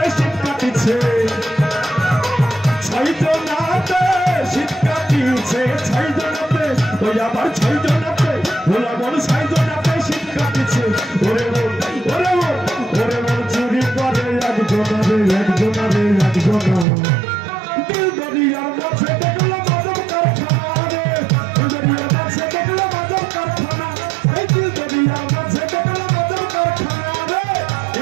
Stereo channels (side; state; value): left; drops out; at 16.9 s